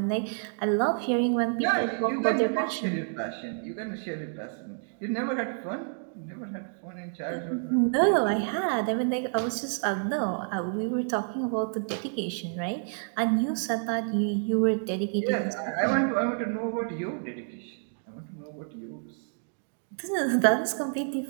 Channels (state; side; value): silent; left; 59 dB below the other